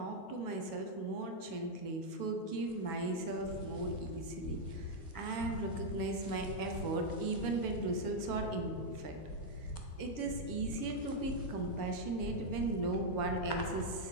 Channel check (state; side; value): late; right; 12 ms